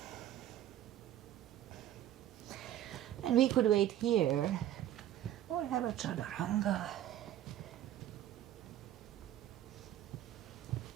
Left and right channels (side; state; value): left; quieter; 12.1 dB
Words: And we could wait here or have a chaturanga.